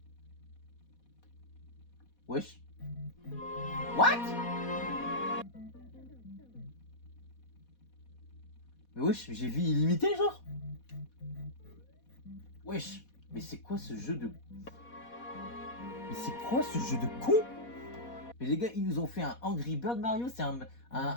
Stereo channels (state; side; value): late; right; 4.1 ms